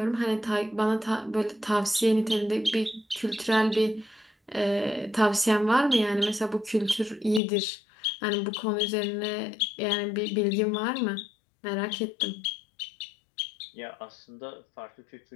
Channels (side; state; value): right; drops out; at 7.4 s